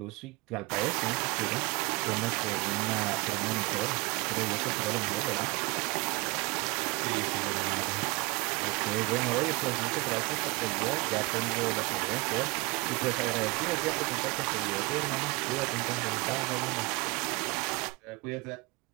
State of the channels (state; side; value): quieter; left; 25.3 dB